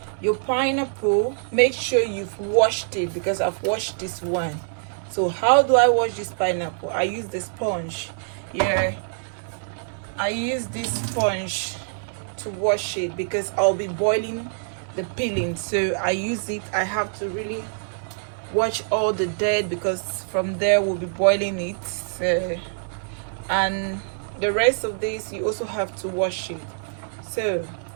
your pineapple, make sure you've washed it, because I've washed this one. So how do I wash this pineapple? I use the sponge. I use this sponge to wash it because I'll be boiling the peeling. So I use it. I have to really wash all the dirt because from there we'll be boiling it. So, and the rest of this you also have to wash it. So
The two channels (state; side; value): silent; left; digital silence